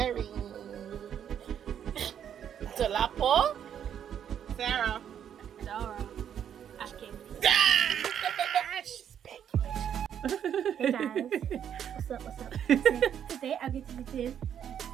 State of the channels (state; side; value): quieter; left; 9.1 dB